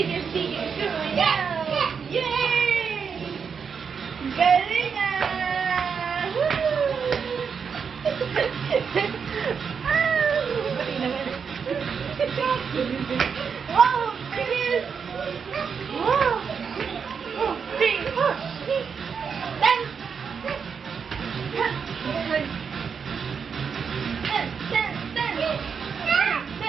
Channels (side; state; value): left; quieter; 6.3 dB